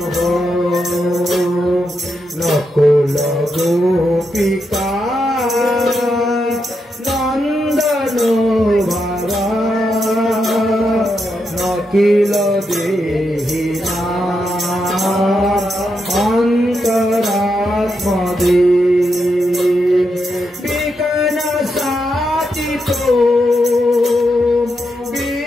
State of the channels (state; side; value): normal; both; correlation 0.83